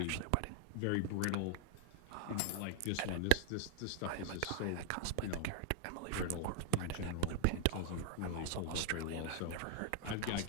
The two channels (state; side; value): different; both; correlation -0.01